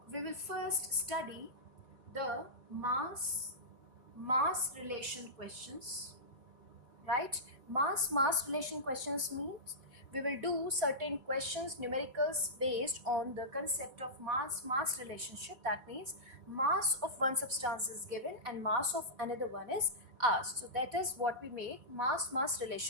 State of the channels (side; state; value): left; late; 4.1 ms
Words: we will first study the mass relation questions, right? Mass relation questions means we will do certain questions, numericals based on the concept of mass relationship. That means mass of one substance is given and mass of another one is asked. So that is what we make mass